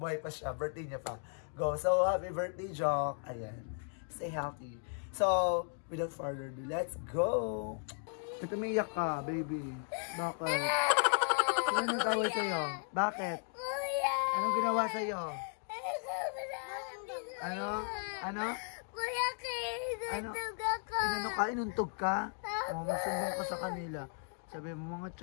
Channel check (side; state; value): right; silent; 54 dB below the other